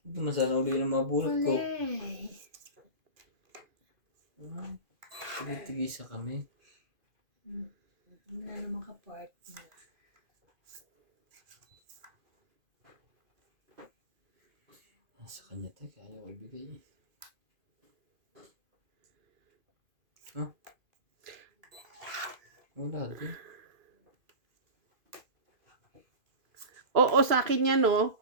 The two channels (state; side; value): late; left; 2.5 ms